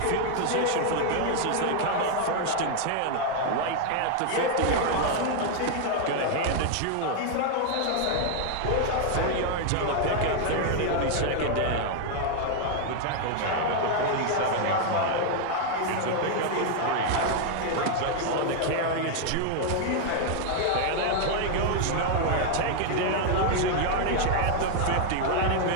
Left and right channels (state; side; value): different; both; correlation 0.00